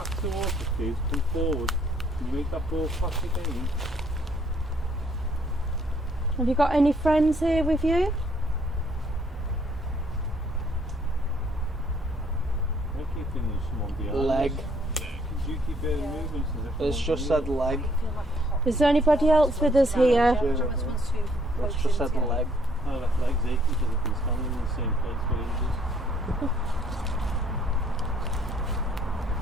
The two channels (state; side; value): normal; both; correlation 0.65